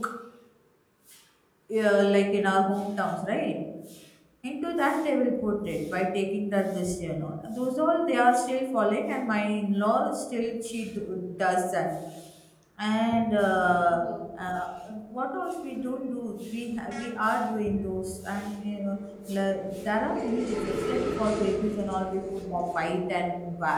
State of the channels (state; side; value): identical; both; correlation 1.00